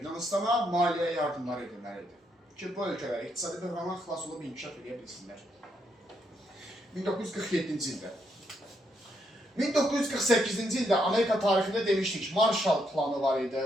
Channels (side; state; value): both; normal; correlation 0.77